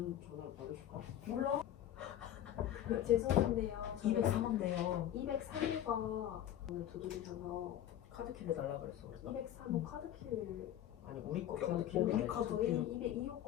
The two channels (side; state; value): right; quieter; 11.6 dB